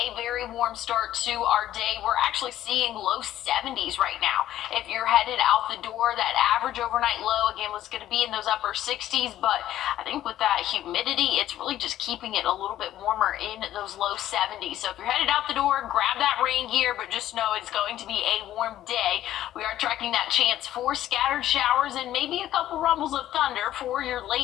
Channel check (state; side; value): quieter; right; 12.9 dB